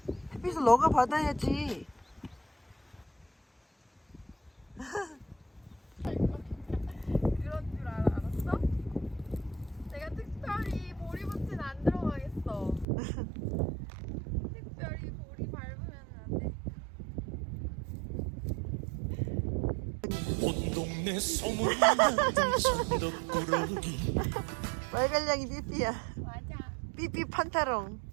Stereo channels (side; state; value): left; drops out; at 12.9 s